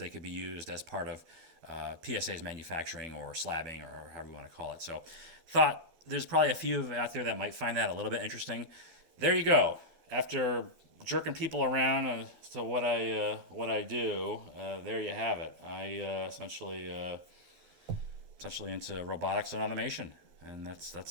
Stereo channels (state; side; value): late; left; 12 ms